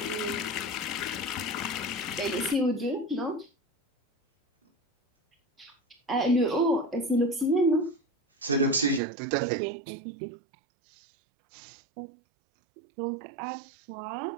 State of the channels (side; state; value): left; drops out; at 9.0 s